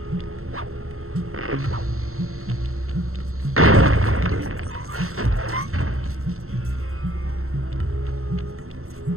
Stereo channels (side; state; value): left; late; 0.63 ms